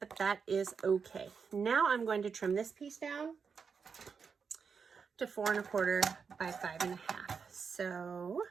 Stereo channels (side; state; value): left; quieter; 5.9 dB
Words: that is okay. Now I'm going to trim this piece down to 4 1/4 by 5 1/2. So